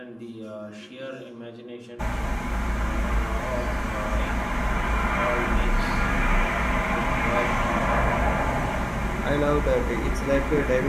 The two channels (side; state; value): both; identical; correlation 1.00